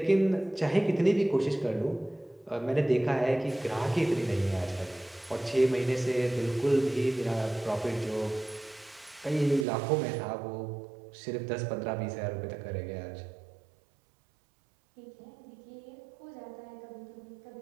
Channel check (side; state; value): left; drops out; at 9.7 s